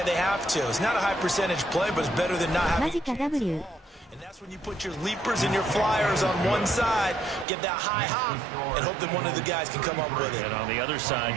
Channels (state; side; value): drops out; left; at 7.5 s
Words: they have to. It's not a high percentage play, but it's better than not having. マジか W。 And that's when you put your leapers and your flyers on one side, get that high hop, and hope that one of the guys can come up with it. And on the other side,